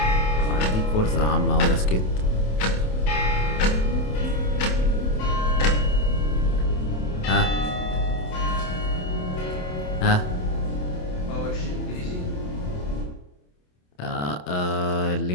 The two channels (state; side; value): late; right; 27 ms